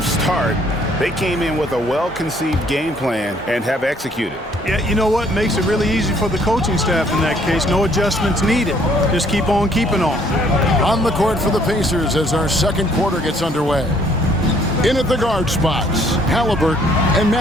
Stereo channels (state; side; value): normal; both; correlation 0.63